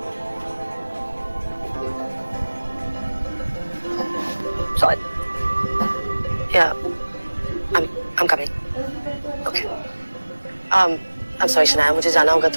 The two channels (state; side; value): inverted; both; correlation -1.00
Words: Sorry. Yeah, I'm coming. Okay. I'm sorry Shanaya, मुझे जाना होगा,